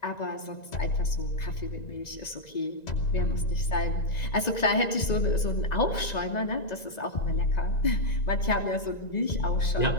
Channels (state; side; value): late; right; 1.9 ms